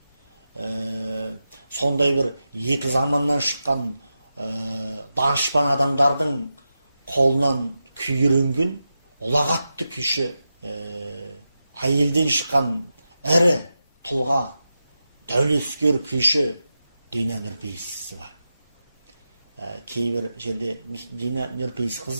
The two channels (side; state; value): both; inverted; correlation -0.91